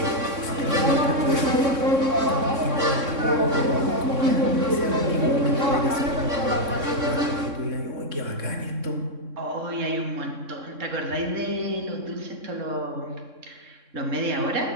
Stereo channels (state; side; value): late; left; 3.6 ms